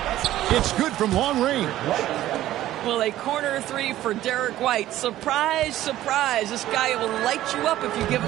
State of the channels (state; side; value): quieter; left; 14.0 dB